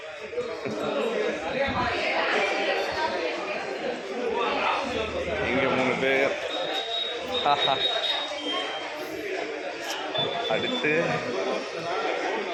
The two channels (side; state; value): both; identical; correlation 1.00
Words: இங்கே 3 பேர். அடுத்து